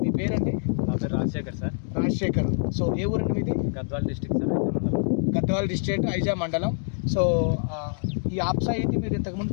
మీ పేరండి? నా పేరు రాజశేఖర్ సార్. రాజశేఖర్. సో ఏ ఊరండి మీది? గద్వాల డిస్ట్రిక్ట్ సార్, ఐజా మండలం. గద్వాల డిస్ట్రిక్ట్, ఐజా మండలం. సో ఈ ఆప్సా 80 మీరు ఇంతకుముందు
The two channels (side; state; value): right; silent; digital silence